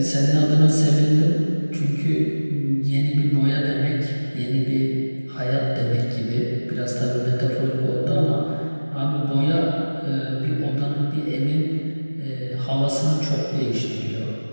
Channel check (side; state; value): both; inverted; correlation -1.00